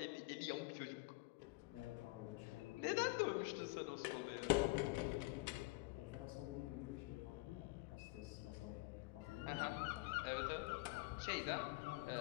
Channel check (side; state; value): right; quieter; 23.6 dB